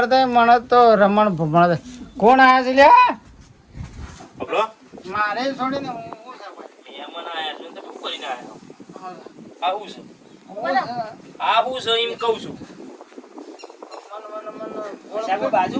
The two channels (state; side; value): identical; both; correlation 1.00